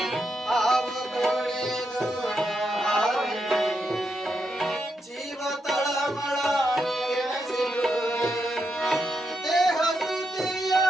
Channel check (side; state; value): both; normal; correlation 0.83